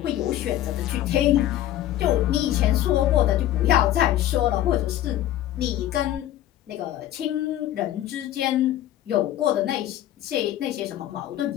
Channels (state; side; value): quieter; right; 12.9 dB